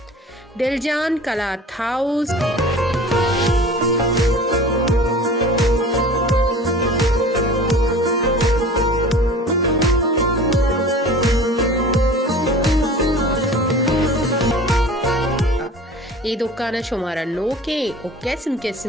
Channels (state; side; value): normal; both; correlation 0.41